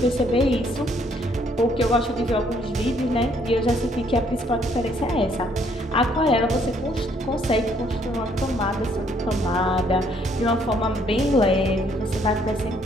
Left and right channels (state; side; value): normal; both; correlation 0.66